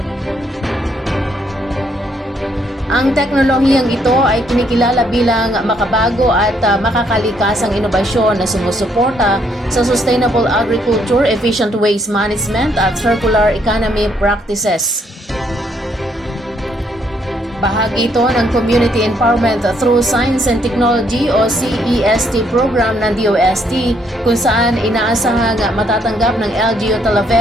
Ang teknolohiyang ito ay kinikilala bilang makabago at makakalikasang inobasyon na sumusuporta sa sustainable agriculture, efficient waste management at circular economy practices. Bahagi ito ng Community Empowerment Through Science and Technology o CEST program ng DOST kung saan inaasahang matatanggap ng LGU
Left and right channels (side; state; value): both; normal; correlation 0.71